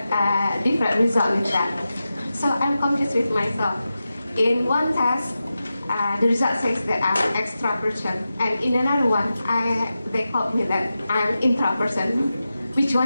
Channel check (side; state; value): both; inverted; correlation -0.92